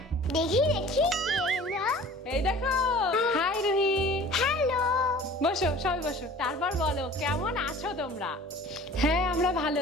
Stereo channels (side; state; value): both; normal; correlation 0.45